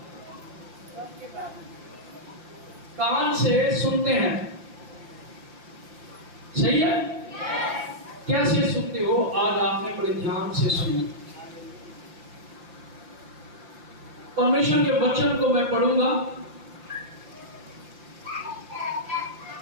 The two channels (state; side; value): late; left; 5.7 ms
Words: कान से सुनते हैं, सही है? कैसे सुनते हो? आज आपने बड़े ध्यान से सुना। परमेश्वर के वचन को मैं पढ़ूंगा